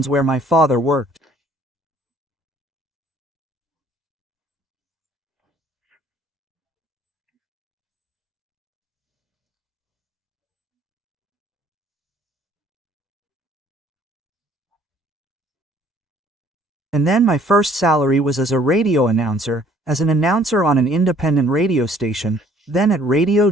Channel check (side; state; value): both; normal; correlation 0.59